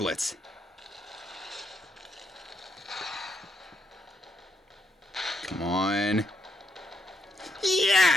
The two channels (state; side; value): normal; both; correlation 0.78